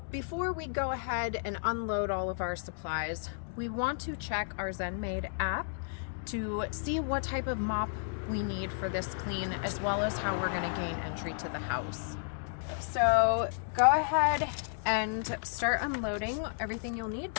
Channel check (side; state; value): right; silent; digital silence